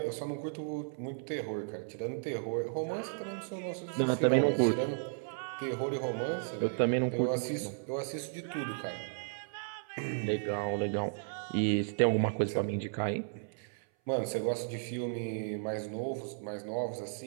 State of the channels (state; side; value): silent; left; 55 dB below the other